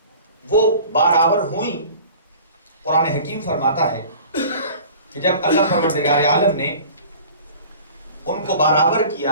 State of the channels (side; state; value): both; inverted; correlation -0.44